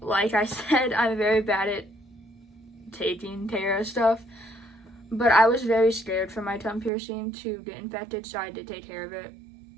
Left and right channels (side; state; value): left; drops out; at 6.9 s